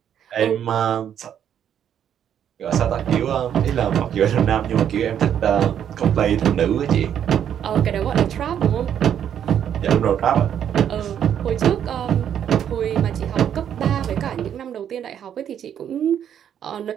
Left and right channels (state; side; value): quieter; left; 9.3 dB